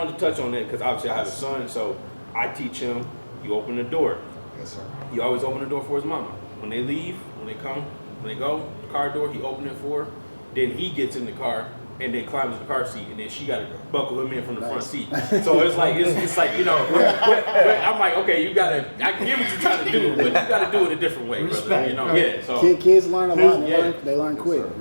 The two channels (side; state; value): both; inverted; correlation -1.00